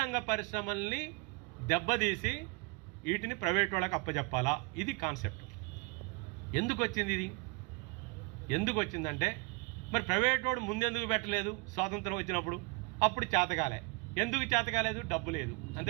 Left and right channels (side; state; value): left; quieter; 28.8 dB